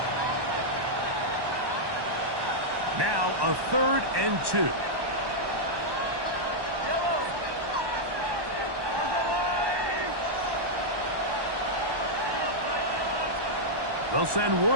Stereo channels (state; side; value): late; left; 1.1 ms